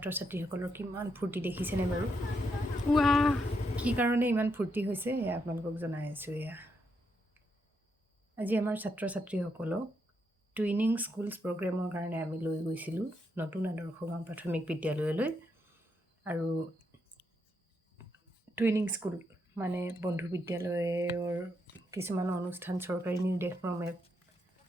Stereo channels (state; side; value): normal; both; correlation 0.80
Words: ছাত্ৰীসকলৰ কিমান ফূৰ্তি দেখিছেনে বাৰু? কি কাৰণে ইমান ফূৰ্তি হৈছে এয়া আপোনালোকক জনাই আছোঁ। আজি আমাৰ ছাত্ৰ ছাত্ৰীসকলক টুইনিং স্কুলছ প্ৰগ্ৰেমৰ কাৰণে আমি লৈ গৈছিলোঁ নতুন আদৰ্শ গাঁও প্ৰাথমিক বিদ্যালয়লৈ। আৰু টুইনিং স্কুল মানে বন্ধু বিদ্যালয়ৰ কিছুমান অনুষ্ঠান চৰকাৰী নিৰ্দেশক্ৰমে